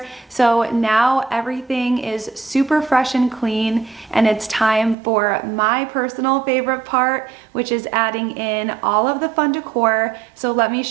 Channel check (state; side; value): drops out; left; at 5.0 s